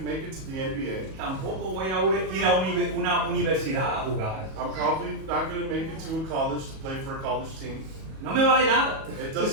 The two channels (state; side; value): late; left; 37 ms